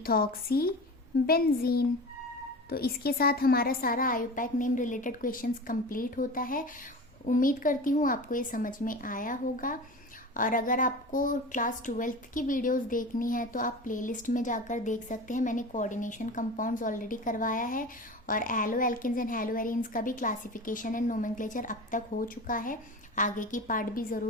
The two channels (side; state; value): both; normal; correlation 0.32